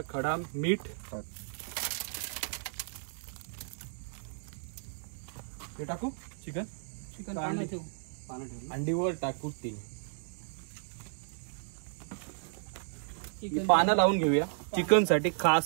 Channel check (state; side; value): silent; left; digital silence